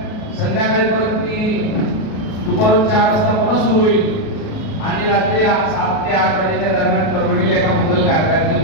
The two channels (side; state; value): right; late; 37 ms